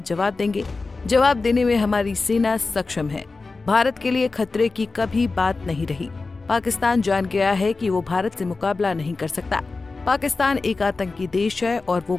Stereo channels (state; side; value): quieter; right; 3.8 dB